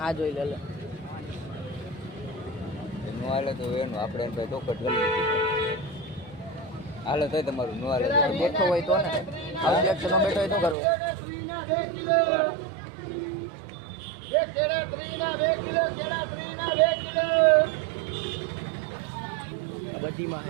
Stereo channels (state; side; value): drops out; left; at 10.8 s